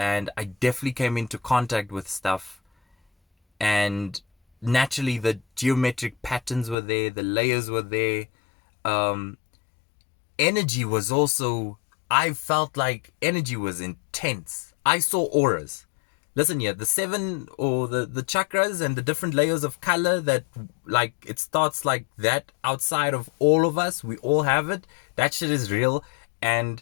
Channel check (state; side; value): drops out; right; at 6.8 s